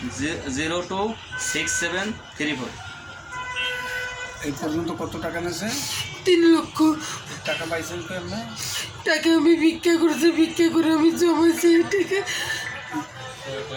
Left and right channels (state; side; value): identical; both; correlation 1.00